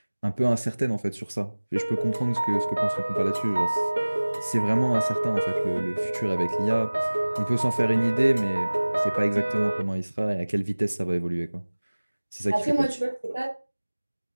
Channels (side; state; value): both; inverted; correlation -1.00